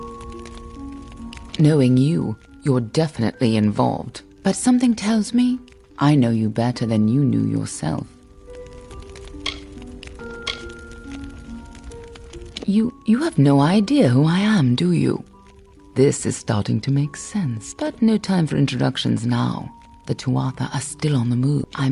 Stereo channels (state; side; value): identical; both; correlation 1.00